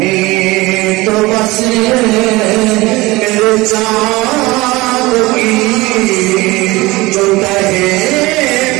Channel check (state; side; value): quieter; left; 21.2 dB